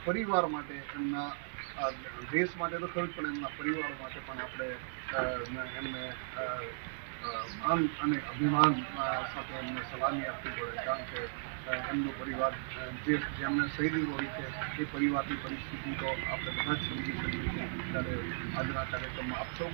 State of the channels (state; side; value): silent; left; 54 dB below the other